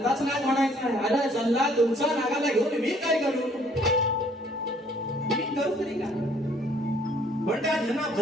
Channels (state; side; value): normal; both; correlation 0.61